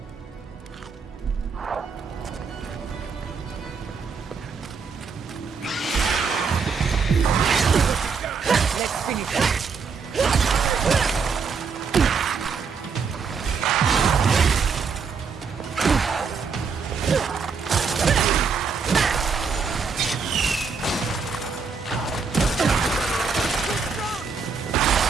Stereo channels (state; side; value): quieter; left; 5.4 dB